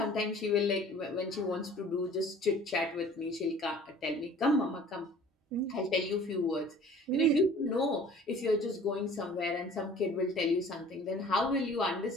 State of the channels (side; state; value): both; normal; correlation 0.48